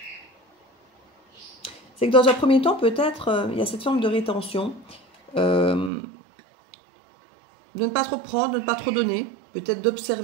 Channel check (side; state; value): left; drops out; at 5.9 s